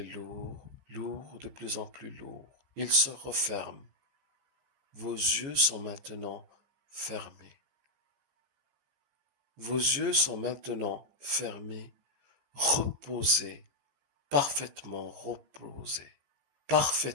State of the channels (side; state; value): left; late; 15 ms